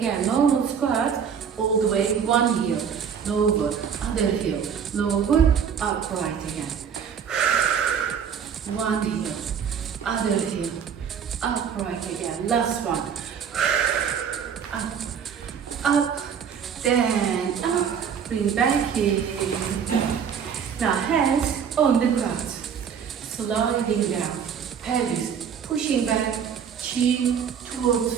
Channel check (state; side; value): quieter; left; 7.4 dB